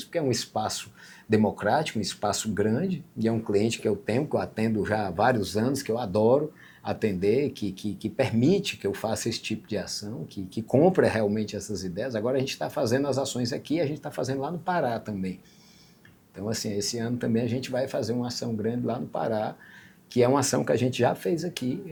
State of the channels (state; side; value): identical; both; correlation 1.00